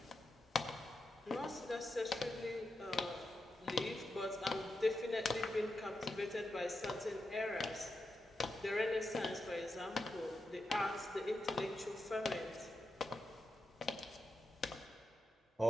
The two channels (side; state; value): both; normal; correlation 0.88